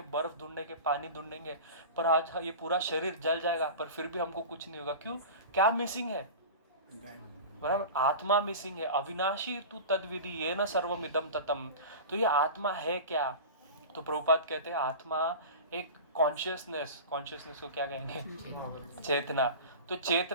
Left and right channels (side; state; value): both; inverted; correlation -0.32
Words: बर्फ ढूंढेंगे, पानी ढूंढेंगे, पर आज ये पूरा शरीर जल जाएगा, पर फिर भी हमको कुछ नहीं होगा। क्यों? क्या मिसिंग है? बराबर, आत्मा मिसिंग है। अविनाशी तू तद्विधि ये न सर्वमिदम ततम। तो ये आत्मा है क्या? तो प्रभुपाद कहते हैं आत्मा एक कॉन्शियसनेस को क्या कहेंगे, चेतना। तो